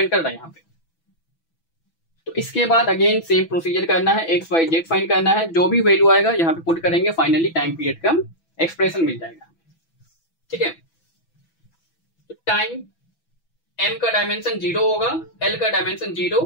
कर रहा है यहाँ पे। तो इसके बाद अगेन सेम प्रोसीजर करना है, एक्स वाई जेड फाइंड करना है, जो भी वैल्यू आएगा यहाँ पे पुट करेंगे, फाइनली टाइम पीरियड का एक्सप्रेशन मिल जाएगा। ठीक है, तो टाइम m का डायमेंशन 0 होगा, l का डायमेंशन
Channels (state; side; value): late; right; 6.1 ms